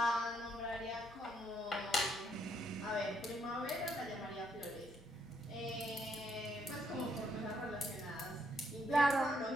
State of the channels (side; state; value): both; normal; correlation 0.73